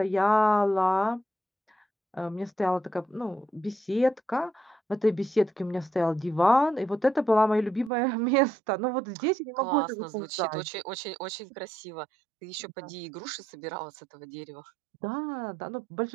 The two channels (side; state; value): left; drops out; at 7.9 s